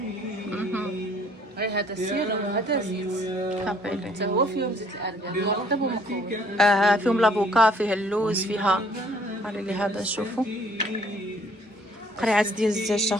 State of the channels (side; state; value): both; normal; correlation 0.59